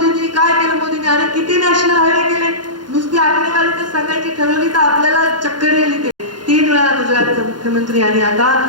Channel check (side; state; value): left; late; 0.71 ms